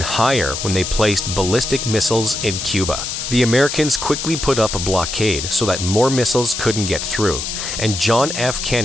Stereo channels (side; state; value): left; noise; hiss, 5 dB below the sound